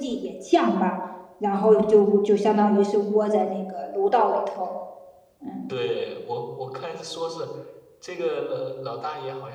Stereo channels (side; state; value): both; identical; correlation 1.00